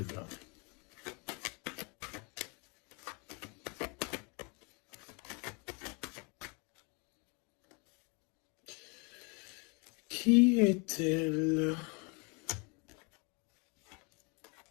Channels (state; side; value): quieter; right; 32.3 dB